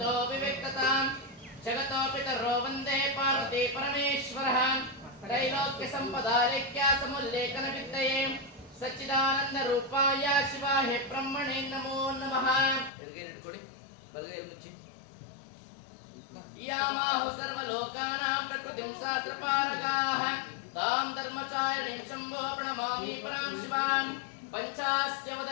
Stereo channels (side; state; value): right; drops out; at 12.9 s